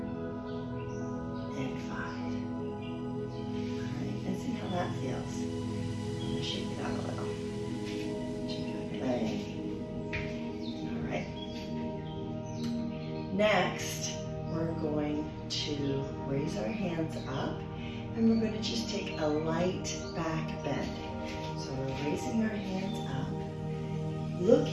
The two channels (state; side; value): identical; both; correlation 1.00